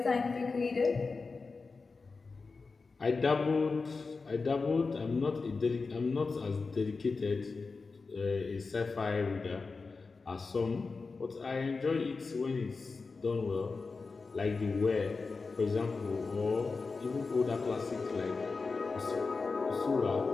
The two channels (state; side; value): quieter; right; 4.3 dB